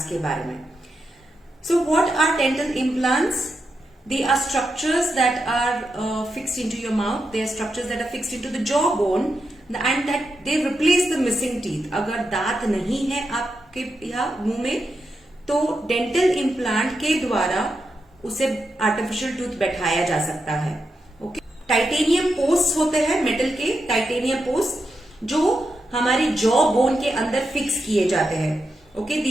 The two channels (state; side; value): normal; both; correlation 0.86